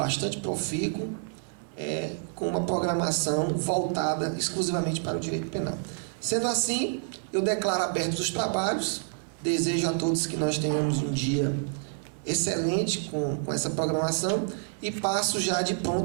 profícuo, com uma programação voltada exclusivamente para o direito penal. Sendo assim, eu declaro abertos os trabalhos, desejo a todos que nós tenhamos um dia excelente com essa programação e passo já de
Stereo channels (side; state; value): left; silent; digital silence